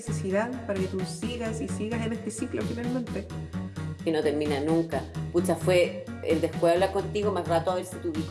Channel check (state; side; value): identical; both; correlation 1.00